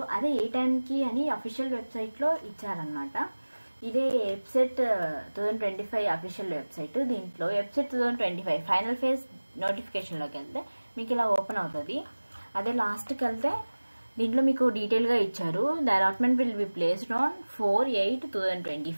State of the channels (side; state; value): both; inverted; correlation -1.00